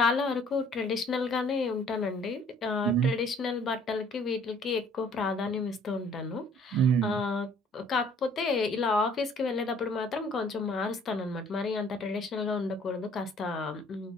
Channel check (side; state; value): both; normal; correlation 0.57